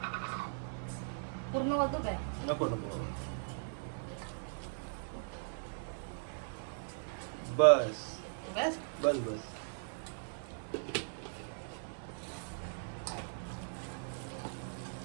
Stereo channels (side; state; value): left; silent; digital silence